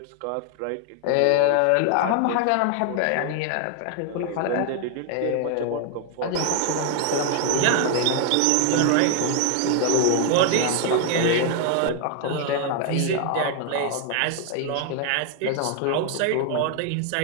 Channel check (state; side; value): different; both; correlation 0.00